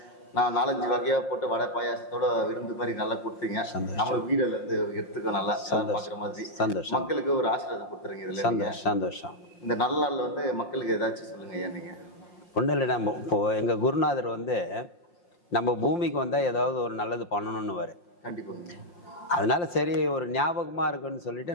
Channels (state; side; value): late; right; 5.7 ms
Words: நான் 4-5 வகையாக போட்டு வடை பாயாசத்தோட விருந்து மாதிரி நல்லா கொடுத்தீங்க. நம்மளுக்கு வீடியோல இருந்து எடுத்துக்கோ நல்லா பார்க்குற மாதிரி மக்களுக்கு ஒரு ஆசீர்வாதம் கொடுத்துருங்க. இதில் சந்தோஷம். இந்த நல்ல நாளில் வந்து மக்களுக்கு ஏதாச்சும் சொல்லுங்கள் ஐயா. நீங்கள் ஒன்றும் இல்லை, நம்ம இப்போது எங்கள் குருநாதர் வந்து நம்ம பூமிக்கு வந்தால் ஏதாவது ஒரு நல்லது பண்ணணும்னு வரும். கண்டிப்பாங்க. அதனால சரி ஒரு ஞாபகமாக இருக்குன்னு சொல்லிட்டு